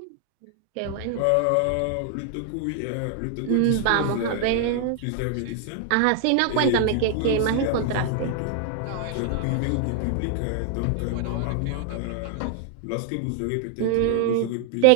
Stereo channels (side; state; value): both; different; correlation 0.00